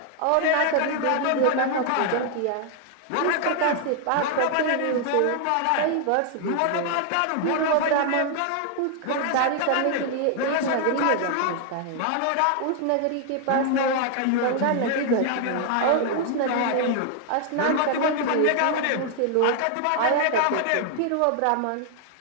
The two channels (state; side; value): different; both; correlation 0.00